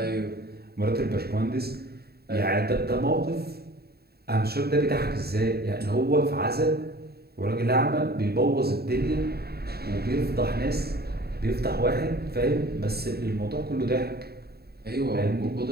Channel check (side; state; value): left; late; 0.46 ms